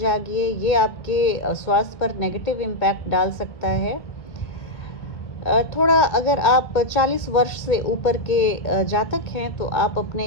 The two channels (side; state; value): right; late; 1.7 ms